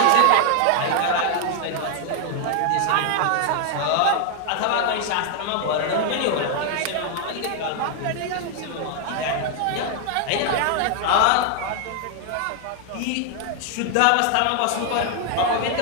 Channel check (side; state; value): both; different; correlation 0.00